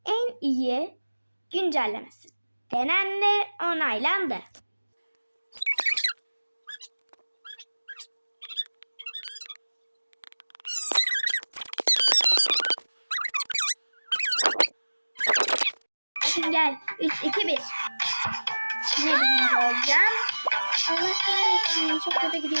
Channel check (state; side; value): inverted; both; correlation -1.00